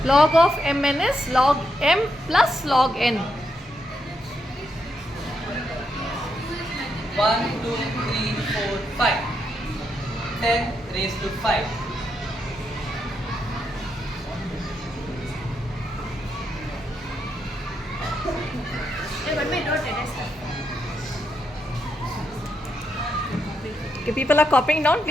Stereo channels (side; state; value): both; normal; correlation 0.81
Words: Log of mn is log m plus log n. 1, 2, 3, 4, 5. 10 raised to 5. Okay, people are copying down.